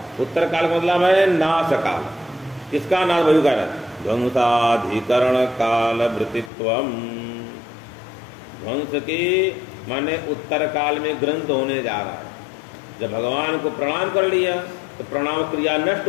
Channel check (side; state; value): right; drops out; at 6.5 s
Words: उत्तर काल का मतलब है नाश काल। किसका नाश? वही कह रहा है ध्वंसाधिकरण काल वृत्तित्वम। ध्वंस के माने उत्तर काल में ग्रंथ होने जा रहा है। जब भगवान को प्रणाम कर लिया तो प्रणाम क्रिया नष्ट